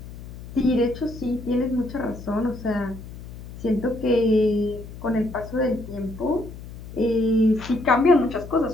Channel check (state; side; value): noise; left; hum, 14 dB below the sound